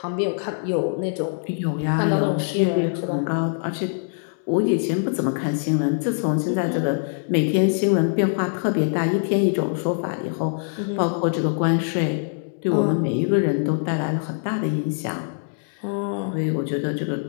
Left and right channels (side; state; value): right; silent; 63 dB below the other